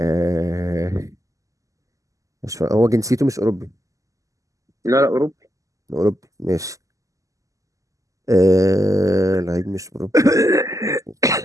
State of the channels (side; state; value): left; late; 0.16 ms